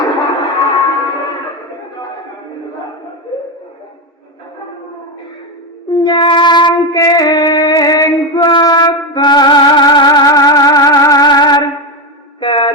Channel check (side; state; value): both; normal; correlation 0.11